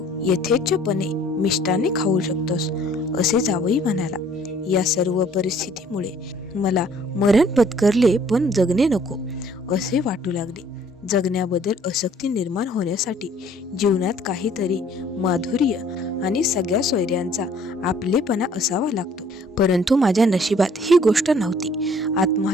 यथेच्छपणे मिष्टाने खाऊ शकतोस असे जावई म्हणाला. या सर्व परिस्थितीमुळे मला मरण पत्करले पण जगणे नको असे वाटू लागले. जगण्याबद्दल आसक्ती निर्माण होण्यासाठी जीवनात काहीतरी माधुर्य आणि सगळ्या सोयऱ्यांचा आपलेपणा असावा लागतो. परंतु माझ्या नशिबात ही गोष्ट नव्हती.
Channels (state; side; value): normal; both; correlation 0.58